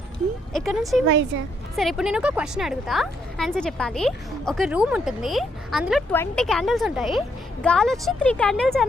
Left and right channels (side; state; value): both; normal; correlation 0.74